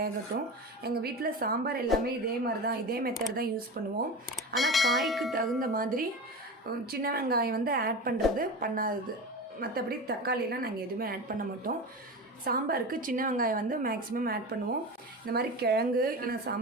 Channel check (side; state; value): both; normal; correlation 0.27